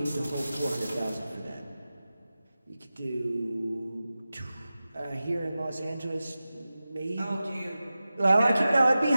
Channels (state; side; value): inverted; both; correlation -0.95